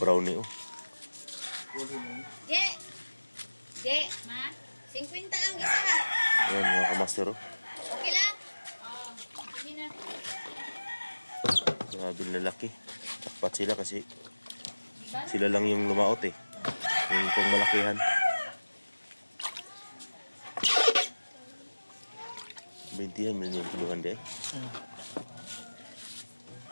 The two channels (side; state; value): both; inverted; correlation -1.00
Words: oh. Je! Je! Ma? 50 ang isa. Ayan, mga kamaster, oh. Okay lang? Oo. Sige na. Grabe, ang lalaki. Tapat sila kasi sila lang yung lumaot, eh. Yung pang malakihan. 20 yan, million kiluhan di, eh.